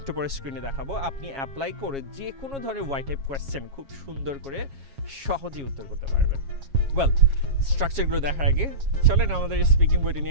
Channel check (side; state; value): left; late; 7.3 ms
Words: একটু পরে স্ক্রিনে দেখাবো, আপনি অ্যাপ্লাই করে যে কোনো ধরনের ওয়াই টাইপ কোয়েশ্চেন খুব সুন্দর করে সহজেই উত্তর করতে পারবেন। ওয়েল, স্ট্রাকচারগুলো দেখার আগে চলেন আমাদের স্পিকিং বইটা